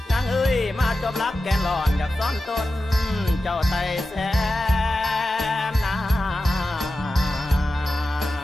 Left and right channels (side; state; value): both; normal; correlation 0.93